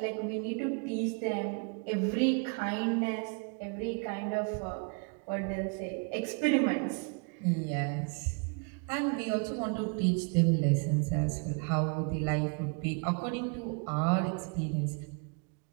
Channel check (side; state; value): left; quieter; 36.2 dB